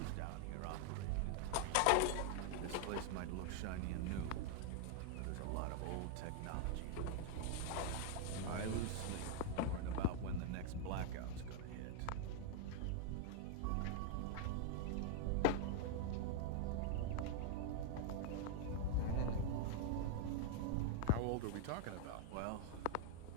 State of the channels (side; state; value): both; different; correlation 0.00